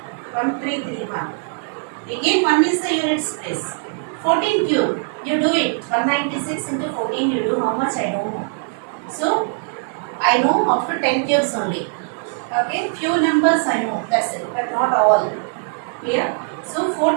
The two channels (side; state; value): left; silent; 57 dB below the other